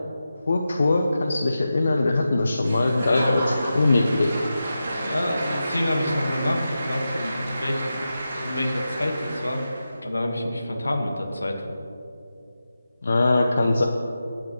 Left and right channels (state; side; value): inverted; both; correlation -0.91